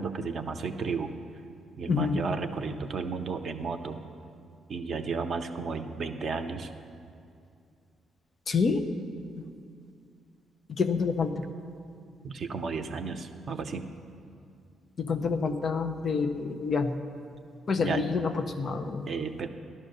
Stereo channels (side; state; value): both; normal; correlation 0.72